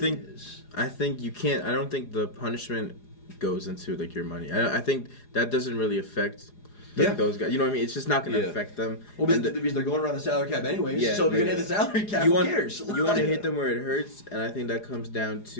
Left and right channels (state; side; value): late; right; 4.9 ms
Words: it is. I think you can't. I don't think the punishment goes into like your money. I think that doesn't really affect. Those guys, you know what I mean? It's just not going to affect them. Well, because they're going around the salary cap anyways. Yeah, so if you're going to hit the salary cap, who cares? You want to hit them where it hurts, and I think that comes down